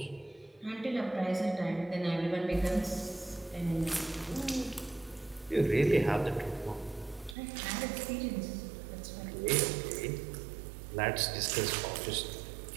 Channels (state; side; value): drops out; left; at 7.4 s